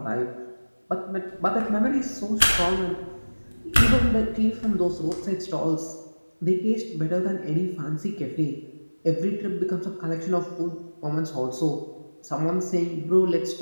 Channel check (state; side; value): inverted; both; correlation -1.00